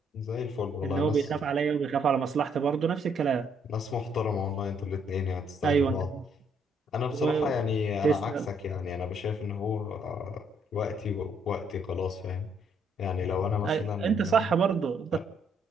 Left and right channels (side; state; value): both; normal; correlation 0.70